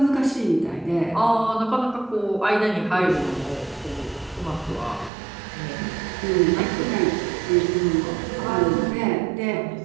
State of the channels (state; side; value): drops out; left; at 5.1 s